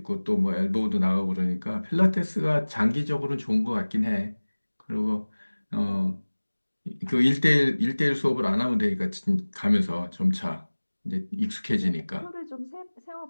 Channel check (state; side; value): inverted; both; correlation -1.00